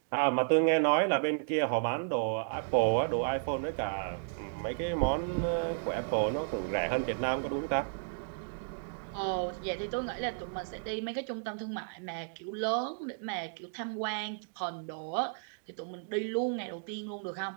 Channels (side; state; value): left; silent; digital silence